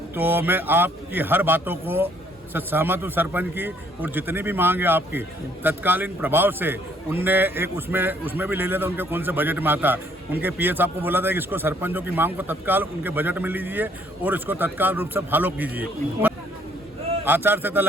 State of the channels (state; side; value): normal; both; correlation 0.64